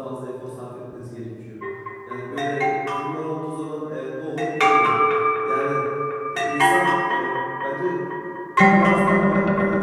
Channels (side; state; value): both; identical; correlation 1.00